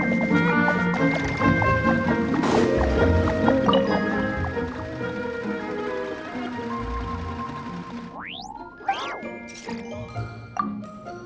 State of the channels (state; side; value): identical; both; correlation 1.00